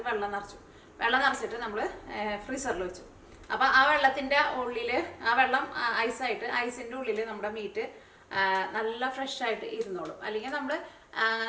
വെള്ളം നിറച്ചിട്ട് നമ്മൾ ഫ്രീസറിൽ വെച്ചു. അപ്പോൾ ആ വെള്ളത്തിൻ്റെ ഉള്ളിൽ, ആ വെള്ളം ഐസിൻ്റെ ഉള്ളിൽ നമ്മുടെ മീറ്റ് നല്ല ഫ്രഷായിട്ട് ഇരുന്നോളും. അല്ലെങ്കിൽ നമ്മൾ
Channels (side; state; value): both; identical; correlation 1.00